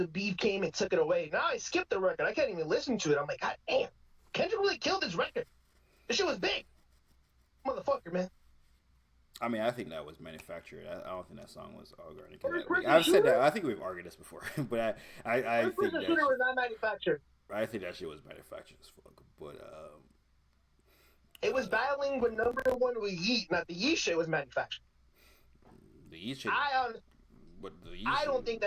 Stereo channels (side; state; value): both; identical; correlation 1.00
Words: beef came and took it away. Now I skipped the record. I can't even listen to it. I'm like, God damn, Kendrick really killed this record. This shit was big, motherfucker, man. I mean, I think that was manufactured. I don't think that song was organic. I've said that. I think we've argued this before, but I think that shooter was not manufactured. I think that shit was manufactured as fuck. But it was battling with number one with Yeet. Not the Yeet shit was manufactured. The Yeet shit. I don't think